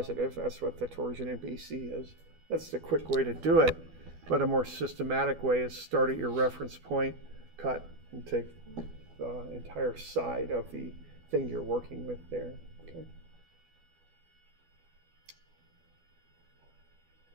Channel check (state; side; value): late; left; 12 ms